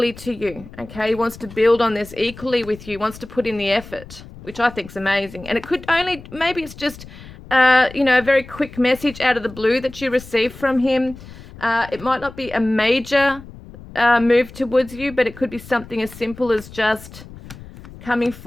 to you, okay? He wants to build on this equally with you, wants to put in the effort, which I think is amazing. And it could only, maybe it's just, you know, a very quick message out of the blue that you receive from him. It might not be a major move towards you, but it could be something as simple as just coming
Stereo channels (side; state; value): left; noise; rumble, 17 dB below the sound